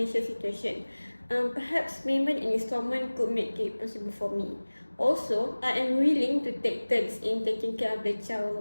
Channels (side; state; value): both; inverted; correlation -1.00